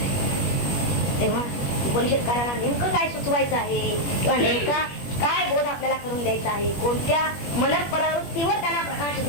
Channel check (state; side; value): late; right; 21 ms